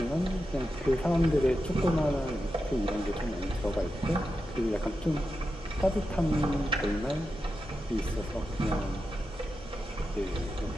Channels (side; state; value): both; normal; correlation 0.89